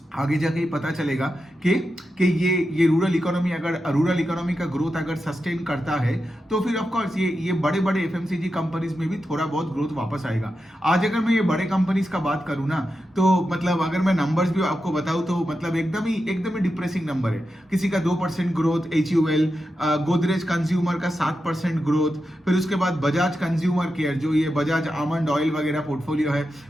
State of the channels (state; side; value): normal; both; correlation 0.89